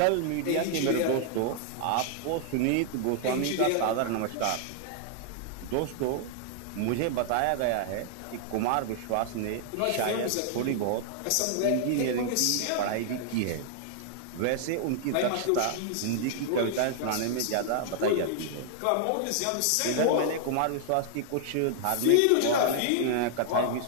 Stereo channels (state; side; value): different; both; correlation 0.00